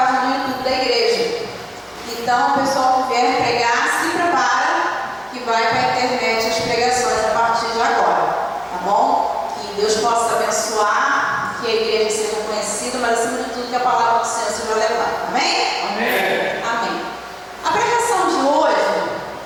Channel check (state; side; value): identical; both; correlation 1.00